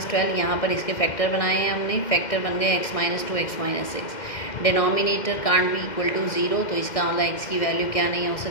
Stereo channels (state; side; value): late; right; 2.1 ms